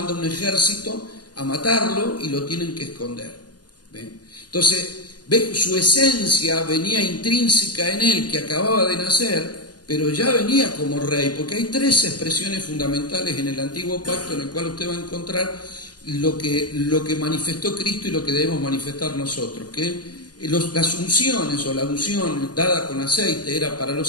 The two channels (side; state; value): right; late; 0.69 ms